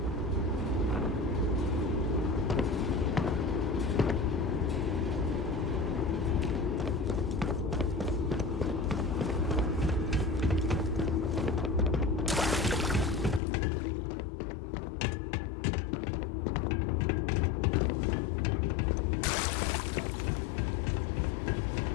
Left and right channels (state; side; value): drops out; right; at 13.4 s